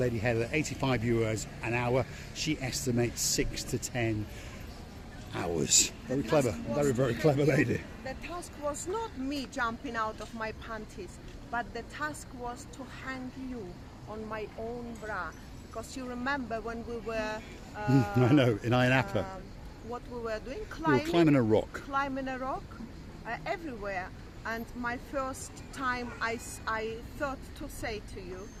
Heather €85 an hour? She estimates 6 to 10 hours. Very clever, very clever lady. The task was not me jumping out of my panties, but the task was to hang you on my own bra. Because you remember when we were... I know, in Ayia Napa. What we were doing? We were climbing a rock. Climbing a rock, everywhere. And my first time I thought to say to you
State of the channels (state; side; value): identical; both; correlation 1.00